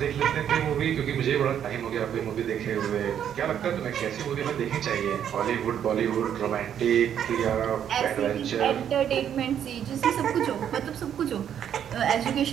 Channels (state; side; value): quieter; left; 9.3 dB